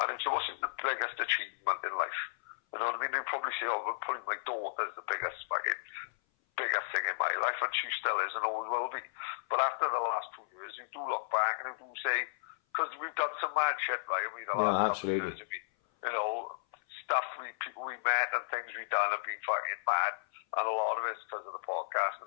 And it wasn't the biggest achievement in life. You know what I mean? They'd probably say, putting my daughter as the biggest thing in my life, and she still is and always will be. But after the last 2 years, you do look back and you do say, because we've done some mad shit, right? I mean, the last couple of years, stuff people we met and things we've done have been fucking mad, and a lot of it's because of the podcast.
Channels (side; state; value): right; silent; 55 dB below the other